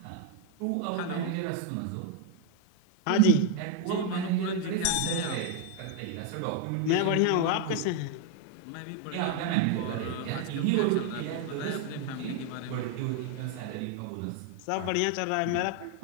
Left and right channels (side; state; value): both; different; correlation 0.01